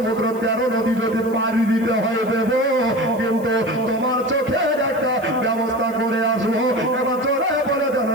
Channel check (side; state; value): right; noise; hiss, 24 dB below the sound